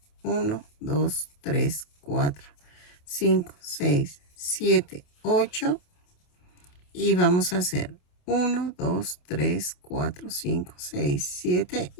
1, 2, 3, 4, 5, 6, 7, 8. Y vamos a hacer 1, 2, 3, 4, 5, 6, 7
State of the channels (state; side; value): late; right; 28 ms